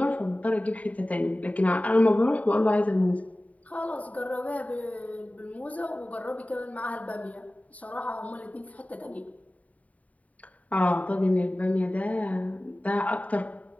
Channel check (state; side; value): late; right; 0.069 ms